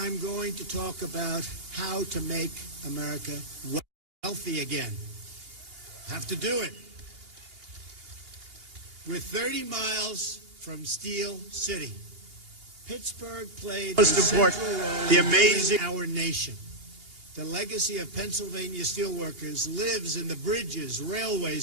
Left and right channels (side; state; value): left; late; 2.8 ms